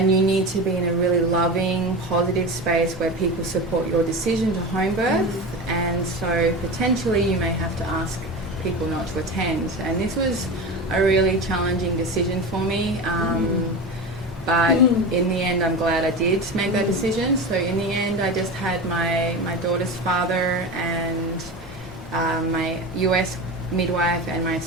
you need to be in a really loving, positive space where people support your decision to home birth. And so potentially you may have to ask people not to attend. And this was a really challenging decision for me. But in the end, I'm glad I did make that decision. So in the end, I just had my daughter's father and my US midwife and my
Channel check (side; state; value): both; normal; correlation 0.26